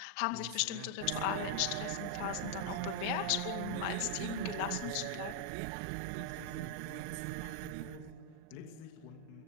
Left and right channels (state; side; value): different; both; correlation 0.00